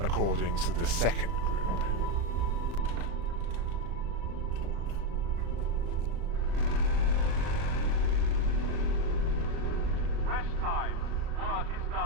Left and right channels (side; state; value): left; late; 35 ms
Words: to the second group. Rest time. Work is